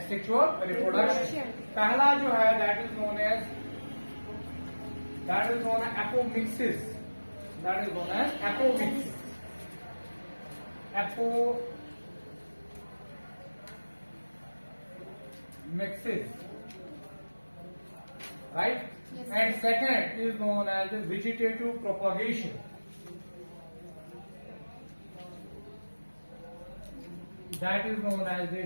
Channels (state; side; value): inverted; both; correlation -1.00